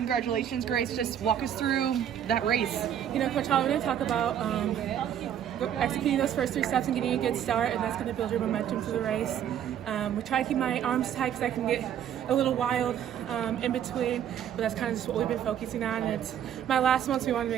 Grace. Just walk us through that race. Coach Hall, we're going to talk about executing those first 3 steps and getting a good start, and that's going to build your momentum for the race. We try to keep my arms tight because I can get a little wild in between, but that's kind of just what we've been focusing on. And it's my last one, so we want to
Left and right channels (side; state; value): left; quieter; 9.8 dB